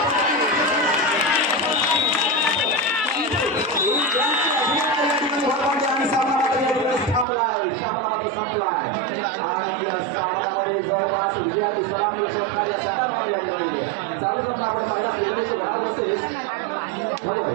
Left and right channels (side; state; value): left; drops out; at 7.2 s